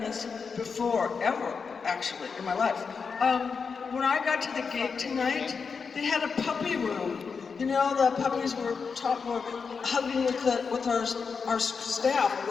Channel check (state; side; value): quieter; right; 5.5 dB